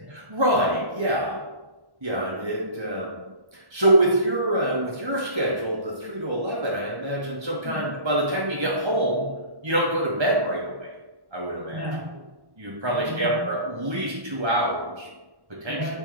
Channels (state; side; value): late; left; 1.1 ms